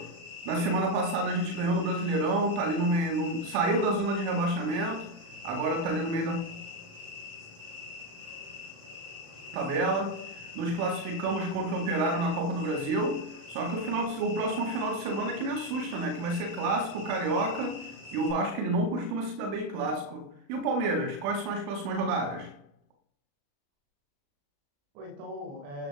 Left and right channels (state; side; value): late; left; 36 ms